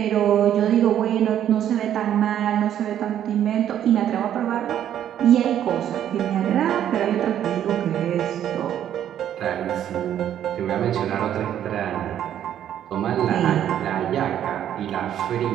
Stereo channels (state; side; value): quieter; left; 10.5 dB